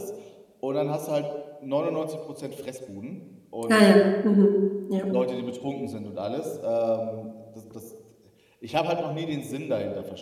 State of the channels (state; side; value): identical; both; correlation 1.00